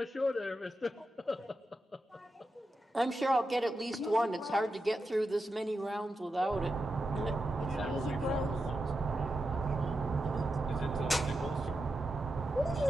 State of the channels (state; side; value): normal; both; correlation 0.88